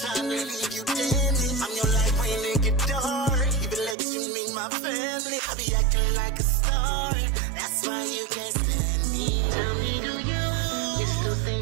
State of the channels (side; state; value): left; drops out; at 4.0 s